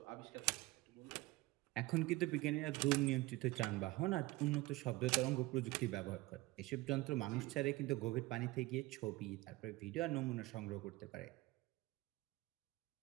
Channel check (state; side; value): quieter; left; 20.0 dB